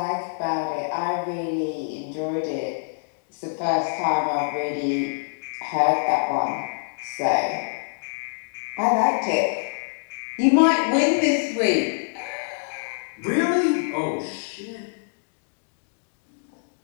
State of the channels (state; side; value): silent; right; digital silence